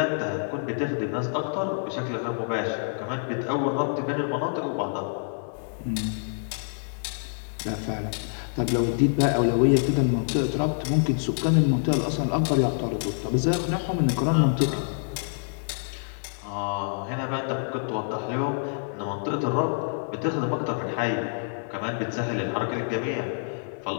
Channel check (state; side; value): silent; right; digital silence